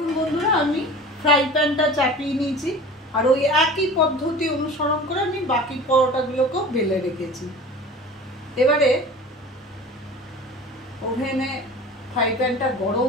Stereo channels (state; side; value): normal; both; correlation 0.38